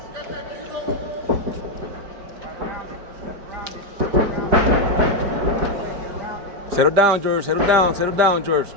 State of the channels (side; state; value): left; late; 5.0 ms